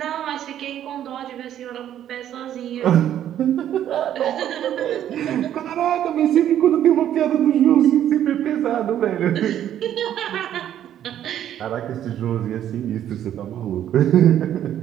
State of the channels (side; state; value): left; quieter; 10.9 dB